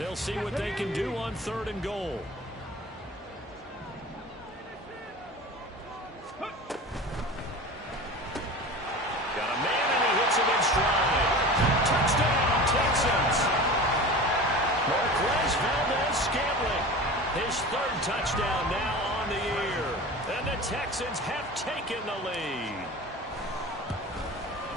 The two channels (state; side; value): normal; both; correlation 0.35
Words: see what they can do on 3rd and goal. Got a man, and he hits him in stride. Touchdown, Texans. Marquez Valdez-Scantling, his 3rd touchdown now on the year. And the Texans have taken the lead.